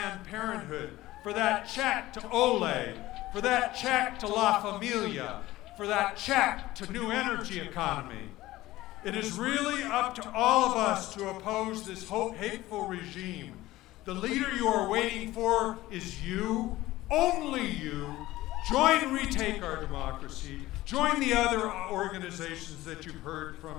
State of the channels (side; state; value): right; quieter; 17.0 dB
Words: Parenthood, for that check to Olay, for that check to La Familia, for that check to New Energy Economy? It is really up to all of us to oppose this hateful regime. The leader you are waiting for is you, only you. Join Retake Our Democracy. Join the other organizations that you've heard